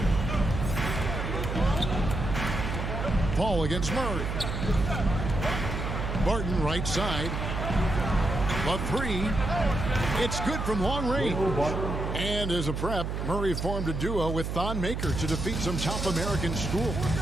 Paul against Murray. Barton right side. The 3. It's good from long range. And as a prep, Murray formed a duo with Thon Maker to defeat some top American schools.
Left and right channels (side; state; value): right; noise; hum, 3 dB below the sound